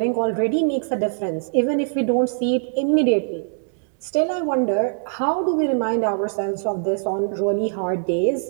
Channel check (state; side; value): silent; left; digital silence